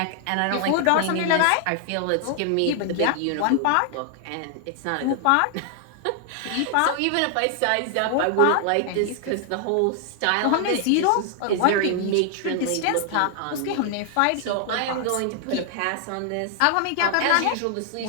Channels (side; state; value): both; different; correlation 0.00